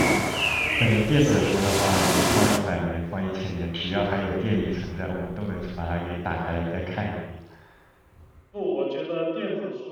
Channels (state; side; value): identical; both; correlation 1.00